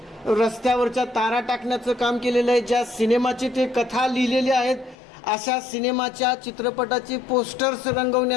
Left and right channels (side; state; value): right; drops out; at 5.0 s